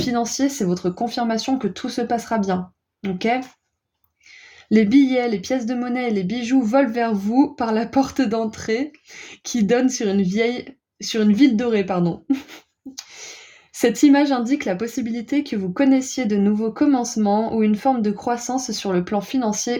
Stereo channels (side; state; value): both; identical; correlation 1.00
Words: c'est votre confirmation que tout se passera bien. Ok ? Les billets, les pièces de monnaie et les bijoux volent vers vous par la porte d'entrée qui donne sur une ville dorée, pardon. Cette image indique la possibilité que vous connaissiez de nouveaux commencements ou une forme de croissance sur le plan